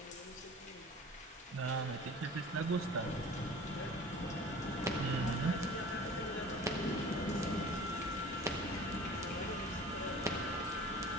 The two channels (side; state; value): both; normal; correlation 0.42